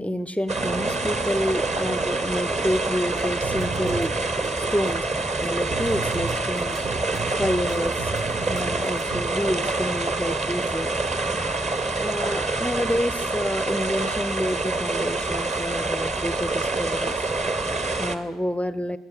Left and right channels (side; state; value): both; normal; correlation 0.76